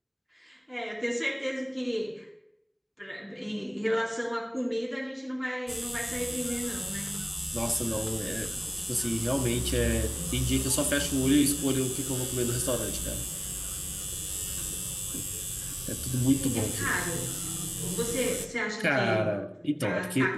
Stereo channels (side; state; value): both; identical; correlation 1.00